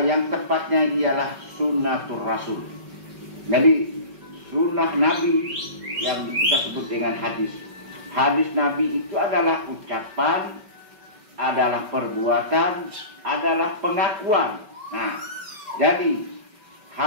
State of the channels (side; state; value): left; late; 5.2 ms